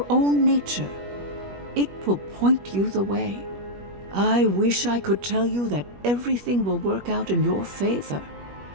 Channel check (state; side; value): late; left; 21 ms